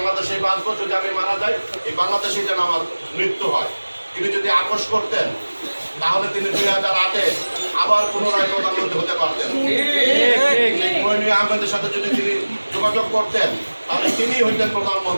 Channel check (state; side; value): inverted; both; correlation -1.00